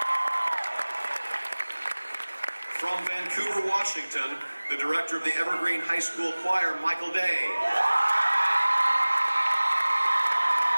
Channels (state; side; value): inverted; both; correlation -1.00